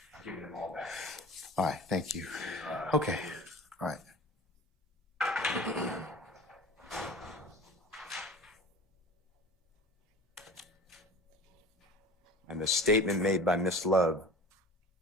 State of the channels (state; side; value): normal; both; correlation 0.38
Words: giving them all back. All right, thank you. Okay, all right. And the statement made by Miss Love